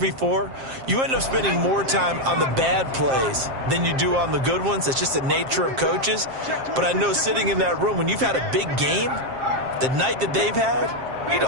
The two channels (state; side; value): late; left; 7.5 ms